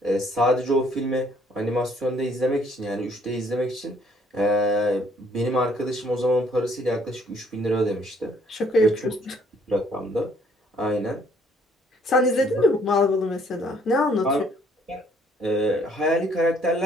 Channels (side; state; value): both; normal; correlation 0.63